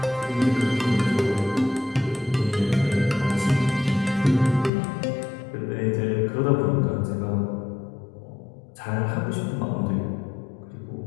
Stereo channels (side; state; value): right; drops out; at 4.7 s